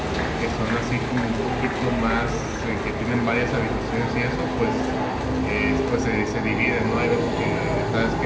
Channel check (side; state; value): both; identical; correlation 1.00